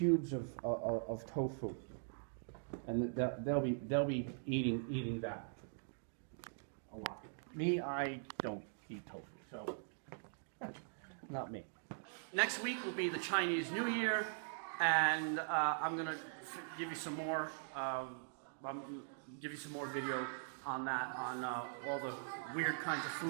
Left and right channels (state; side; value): silent; left; digital silence